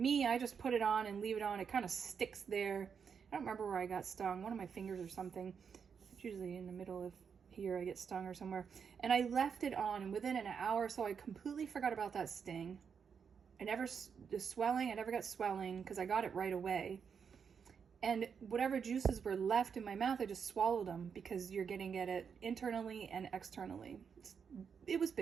just put it on and leave it on. It kind of sticks there. I don't remember where I got stung. One of my fingers or something. It's usually in the middle of here I get stung or somewhere. And I left it on, and within an hour or so, I completely forgot about that sting. I never got swelling because I got it right away. And whatever juices were left in my mouth, I just swallowed them, because you're getting at it internally and externally. It was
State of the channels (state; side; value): quieter; left; 6.6 dB